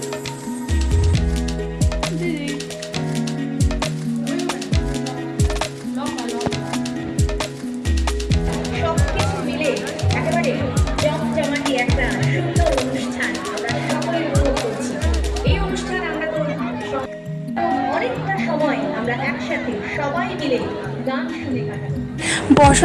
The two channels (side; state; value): both; identical; correlation 1.00